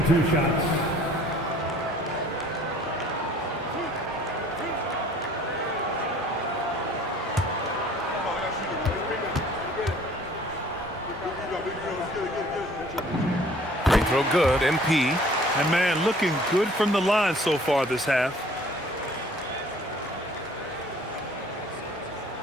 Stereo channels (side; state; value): both; normal; correlation 0.53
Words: 2 shots. Free throw good, MP. And man, looking good from the line so far this half.